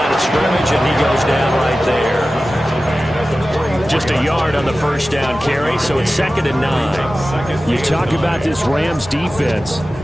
of scrimmage, and he goes down right there. Just a yard on the first down carry, so it's 2nd and 9. You talk about this Rams defense,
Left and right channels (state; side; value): normal; both; correlation 0.95